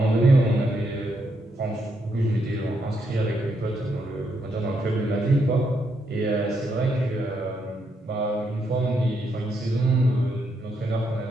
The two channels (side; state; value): both; normal; correlation 0.78